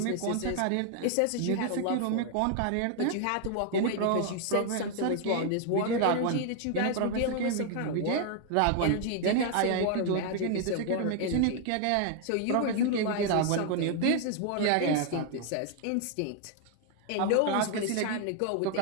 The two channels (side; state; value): both; different; correlation 0.00